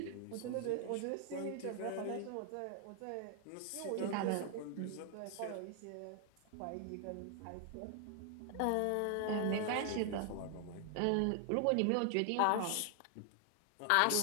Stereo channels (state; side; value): different; both; correlation 0.00